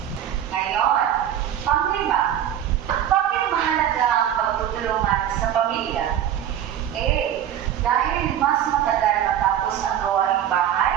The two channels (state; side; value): quieter; left; 10.4 dB